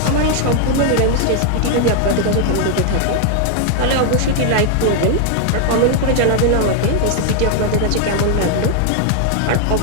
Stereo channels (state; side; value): different; both; correlation 0.00